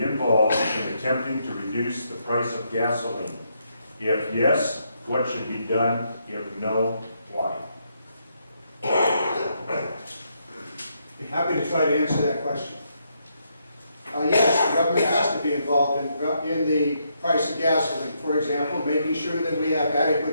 involved in attempting to reduce the price of gasoline? If yes, what should be done? If no, why? Be happy to try to answer that question. Yes, government has to be involved in the price of gasoline. For example, making sure that we have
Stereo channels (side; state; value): both; inverted; correlation -0.77